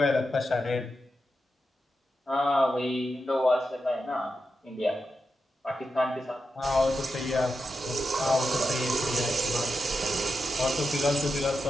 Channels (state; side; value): normal; both; correlation 0.88